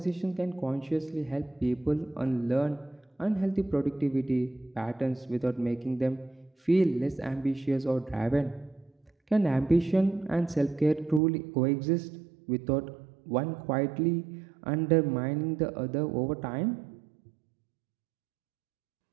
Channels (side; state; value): left; drops out; at 11.2 s